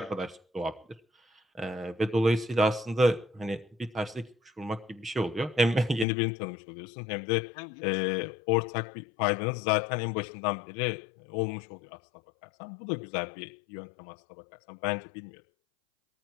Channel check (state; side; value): drops out; right; at 6.1 s